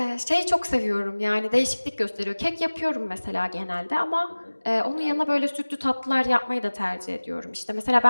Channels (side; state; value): both; inverted; correlation -1.00